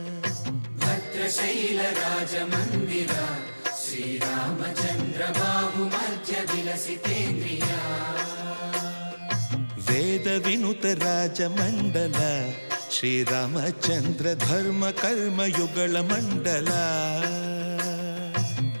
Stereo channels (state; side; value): inverted; both; correlation -1.00